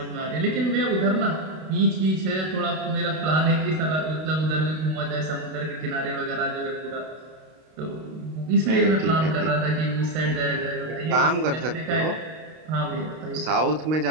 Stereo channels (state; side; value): late; left; 32 ms